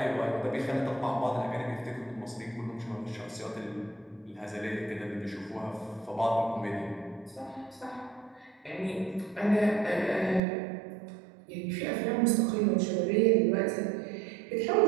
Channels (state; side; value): drops out; left; at 10.4 s